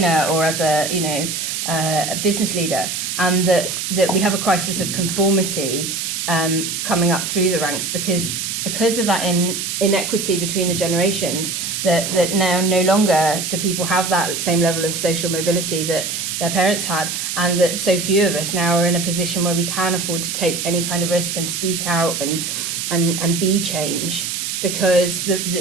or as a business leader, and that we have a crisis of conformity coming up through the ranks because of that inequity between the generations, that now no longer do people have that same level of social mobility that their parents had, and that so few of us now are in a position where we can afford to take any kind of risk and speak out and be change, because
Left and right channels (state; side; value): noise; right; hiss, 3 dB below the sound